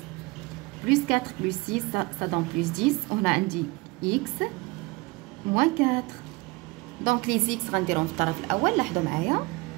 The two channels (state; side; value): quieter; left; 24.7 dB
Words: Plus 4 plus 6 ça donne plus 10. On a عندي x moins 4. Donc les x غنديرهم في الطرف الأول. لاحظوا معايا.